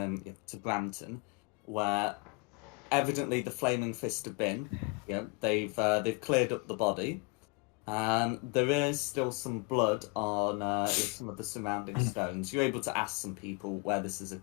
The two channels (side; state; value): right; quieter; 30.0 dB